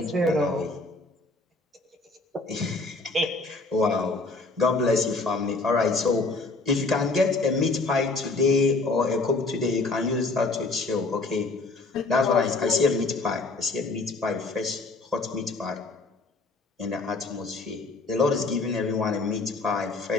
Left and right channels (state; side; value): quieter; right; 3.5 dB